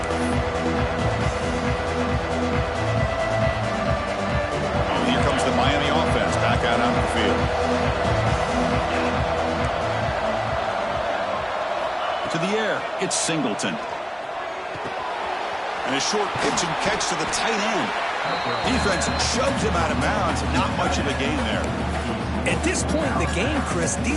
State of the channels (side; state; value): both; identical; correlation 1.00